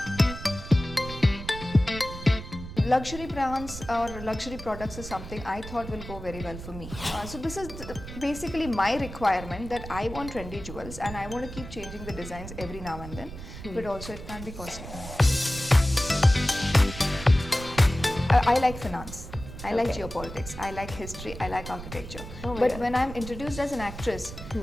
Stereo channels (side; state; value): right; noise; rumble, 11 dB below the sound